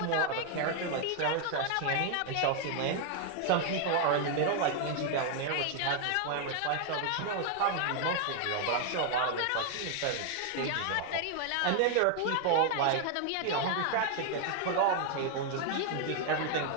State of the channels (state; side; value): different; both; correlation 0.00